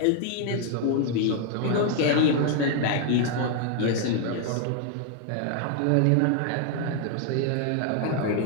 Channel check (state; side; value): different; both; correlation 0.00